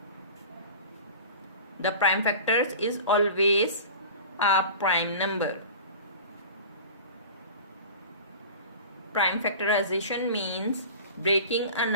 The prime factors is always a prime number. Prime factorization means breaking a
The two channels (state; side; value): inverted; both; correlation -0.37